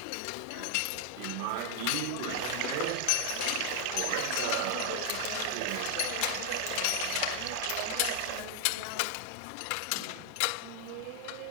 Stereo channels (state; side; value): different; both; correlation 0.00